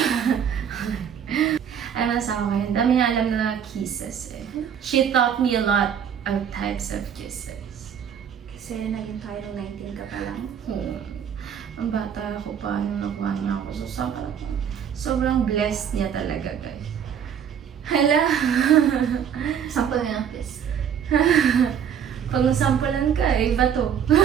Ano sa akin? Dami nga alam na kisses eh. She taught me a lot of types of kisses. Kasi naging tayo nung 19 ka pa lang. Ang bata ako pa nung nakuha niya ako. So, sobrang blessed niya talaga, guys. Hala! Sample na ng kiss. Pag nasampulan ka, iba to.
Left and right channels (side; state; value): left; quieter; 8.3 dB